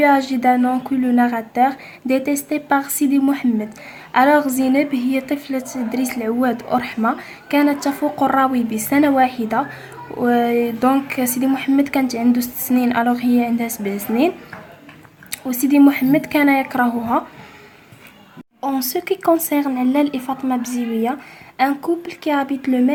âgée d'un an que le narrateur, détestée par Sidi Mohamed. Alors Zineb هي طفلة دريس العواد ورحمة، كانت تفوق الراوي بسنة واحدة. دونك سيدي محمد كانت عنده 6 سنين، alors هي عندها 7 سنين، وسيدي محمد كان يكرهها. En ce qui concerne Lal et Fatma Bziouia, un couple qui habite le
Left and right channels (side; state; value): both; identical; correlation 1.00